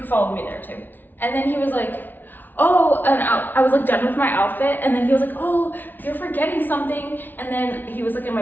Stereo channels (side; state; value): right; late; 0.089 ms